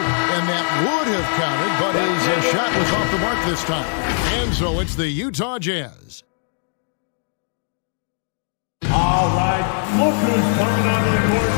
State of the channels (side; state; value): right; silent; digital silence